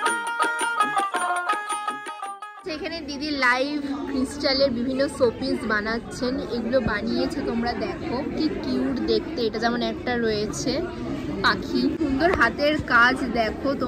এখানে দিদি লাইভ ক্রিস্টালের বিভিন্ন শোপিস বানাচ্ছেন। এগুলো বানিয়েছে, তোমরা দেখো কি কিউট দেখতে। এটা যেমন একটা রয়েছে পাখি, সুন্দর হাতের কাজ। দেখো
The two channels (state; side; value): identical; both; correlation 1.00